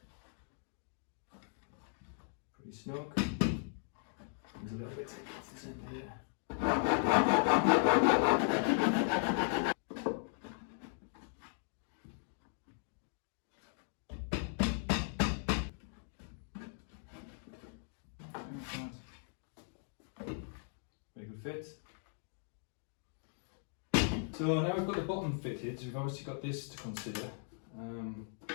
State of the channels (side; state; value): right; silent; digital silence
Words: Pretty snug. There's a little bit taken off the centre here. Very good fit. So now we've got the bottom fitted, we've obviously got this to consider,